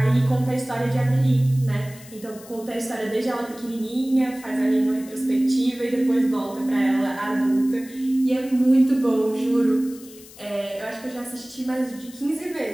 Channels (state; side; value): noise; left; hiss, 20 dB below the sound